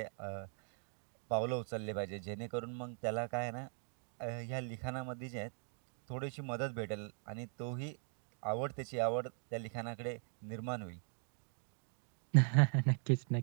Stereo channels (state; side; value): silent; left; 51 dB below the other